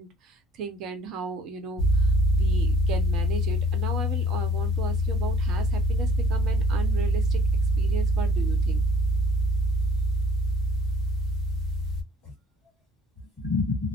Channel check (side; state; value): both; normal; correlation 0.56